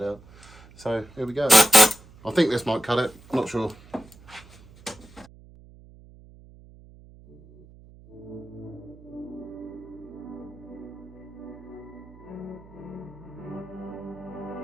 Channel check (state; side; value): noise; right; hum, 22 dB below the sound